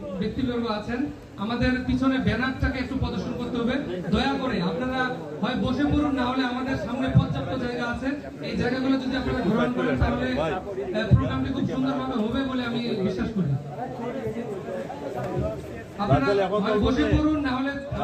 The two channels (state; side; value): identical; both; correlation 1.00